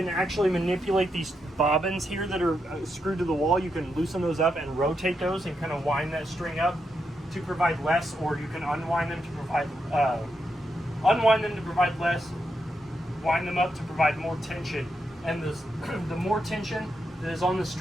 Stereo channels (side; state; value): both; normal; correlation 0.83